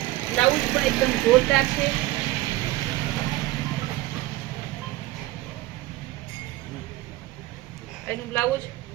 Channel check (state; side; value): quieter; left; 17.6 dB